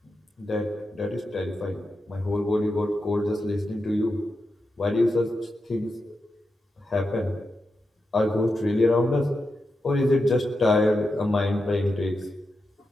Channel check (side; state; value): both; normal; correlation 0.88